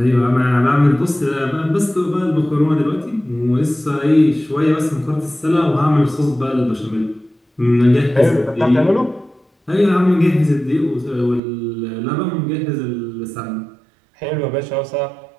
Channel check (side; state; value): left; drops out; at 11.4 s